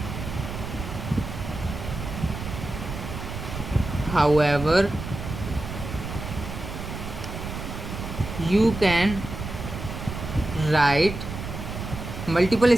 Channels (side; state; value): right; noise; rumble, 7 dB below the sound